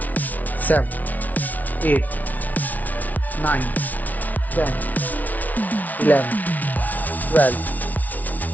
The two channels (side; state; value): right; late; 0.076 ms